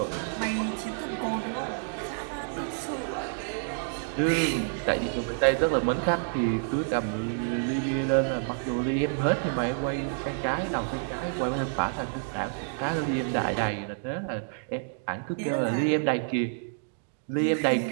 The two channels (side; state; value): left; silent; digital silence